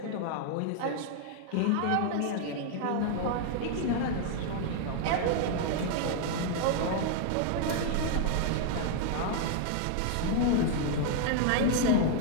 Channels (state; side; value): different; both; correlation 0.00